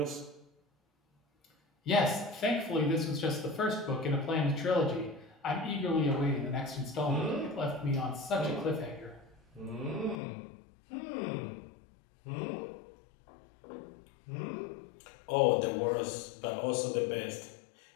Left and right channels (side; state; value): right; drops out; at 10.2 s